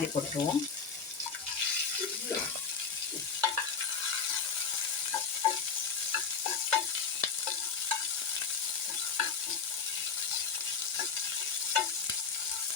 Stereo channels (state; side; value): quieter; right; 5.8 dB